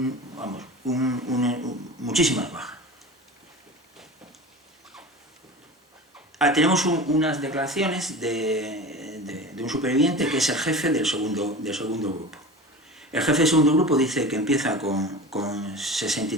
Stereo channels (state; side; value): normal; both; correlation 0.34